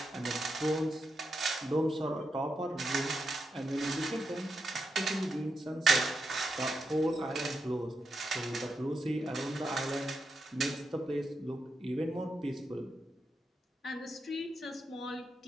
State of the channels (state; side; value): normal; both; correlation 0.85